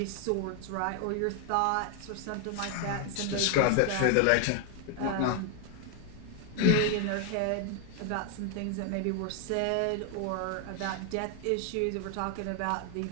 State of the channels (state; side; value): different; both; correlation 0.00